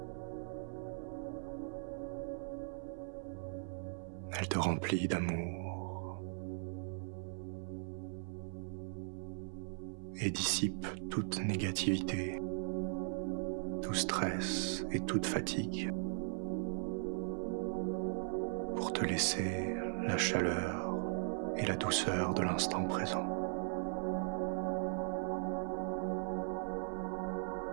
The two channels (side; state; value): left; silent; 52 dB below the other